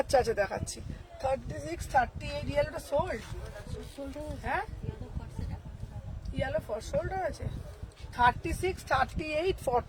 আচ্ছা দেখাচ্ছি, 36, 38 ইয়েলোটা সোল্ড, হ্যাঁ ইয়েলো ফর সোল্ড হয়েছে, 36, 38,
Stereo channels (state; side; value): identical; both; correlation 1.00